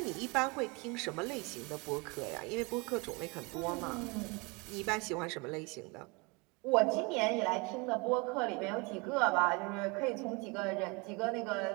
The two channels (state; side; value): quieter; left; 28.6 dB